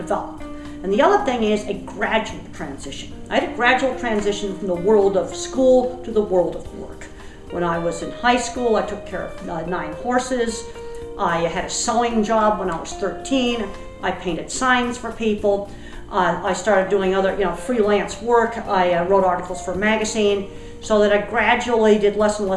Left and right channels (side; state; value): both; identical; correlation 1.00